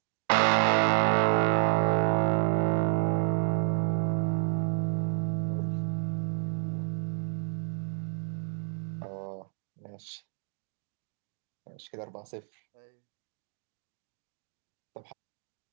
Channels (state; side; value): silent; left; digital silence